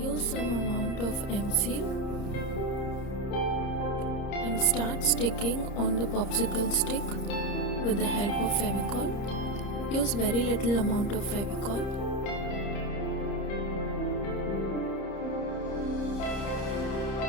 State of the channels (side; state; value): right; late; 30 ms